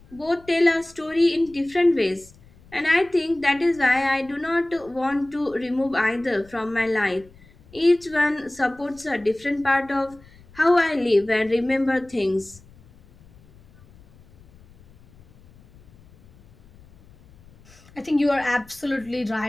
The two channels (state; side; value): noise; left; rumble, 26 dB below the sound